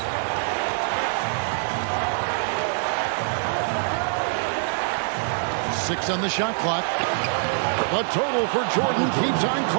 Six on the shot clock. The total for Jordan keeps on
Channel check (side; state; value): left; silent; 62 dB below the other